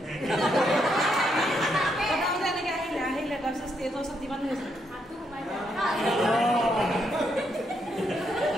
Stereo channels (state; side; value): normal; both; correlation 0.77